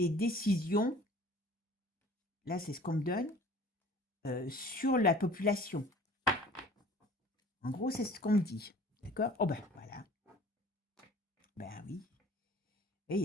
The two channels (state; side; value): normal; both; correlation 0.48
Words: décisions, là, c'est ce qu'on me donne, sur la population. En gros, c'est ce qu'on me dit. D'accord? Oh ben, voilà. Ben oui. Et il